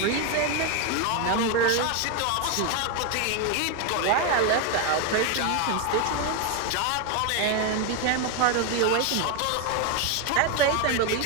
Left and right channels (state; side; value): different; both; correlation 0.01